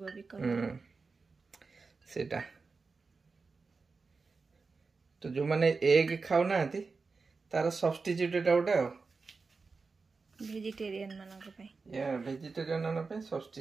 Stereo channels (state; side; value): quieter; left; 4.4 dB